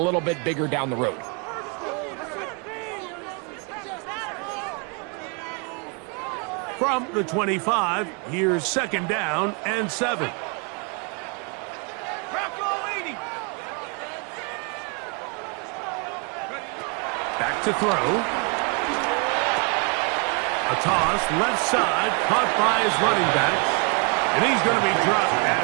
little bit bigger down the road. From the 25, here's 2nd down and 7. Back to throw. A toss, left side, caught by his running backs. And he's going to be dropped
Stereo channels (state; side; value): quieter; left; 34.0 dB